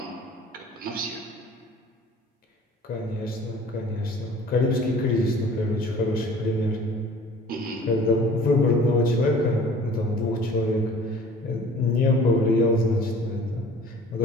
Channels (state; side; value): normal; both; correlation 0.47